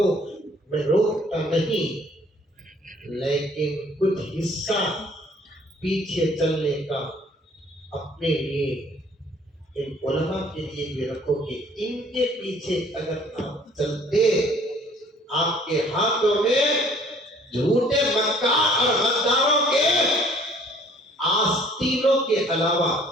میں روکتا نہیں, لیکن کچھ حصہ پیچھے چلنے کا اپنے لیے ان علماء کے لیے بھی رکھو کہ ان کے پیچھے اگر آپ چلتے, آپ کے ہاتھوں میں جھوٹے مکار اور غداروں کے آستینوں کے علاوہ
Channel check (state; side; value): normal; both; correlation 0.57